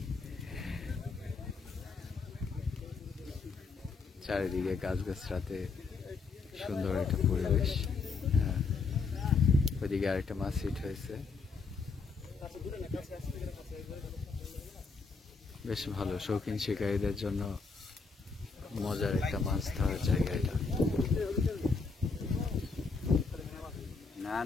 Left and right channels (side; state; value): right; quieter; 4.5 dB